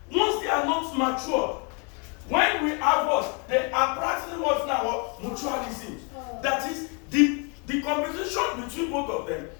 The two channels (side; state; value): right; quieter; 34.9 dB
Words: once they are not mature, when we have what? They are practicing what's now what? Mutualism. That is the competition between both of them.